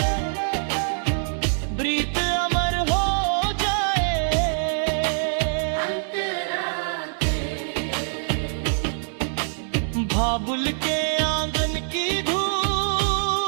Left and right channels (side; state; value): left; silent; digital silence